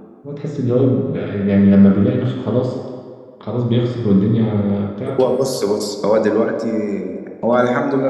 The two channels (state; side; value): identical; both; correlation 1.00